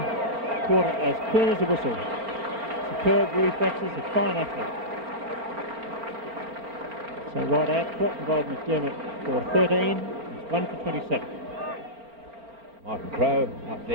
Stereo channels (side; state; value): left; late; 4.4 ms